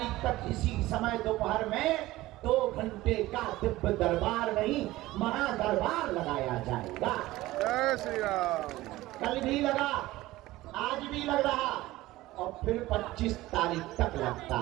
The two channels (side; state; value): left; quieter; 17.5 dB